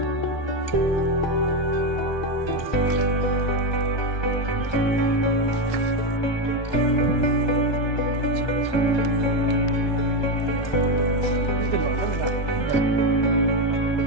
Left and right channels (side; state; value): right; late; 1.2 ms